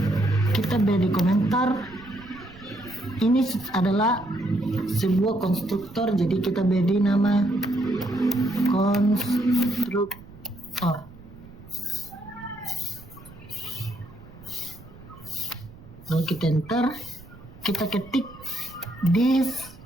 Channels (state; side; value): noise; right; rumble, 20 dB below the sound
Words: Kita beri komentar. Ini adalah sebuah konstruktor, jadi kita beri nama konstruktor. Lalu kita enter, kita ketik this